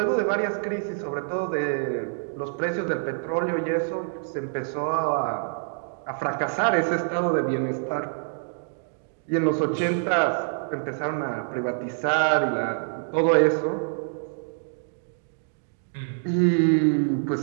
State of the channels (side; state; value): left; silent; digital silence